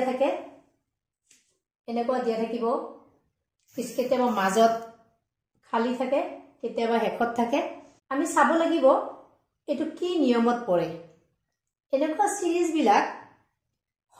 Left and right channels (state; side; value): identical; both; correlation 1.00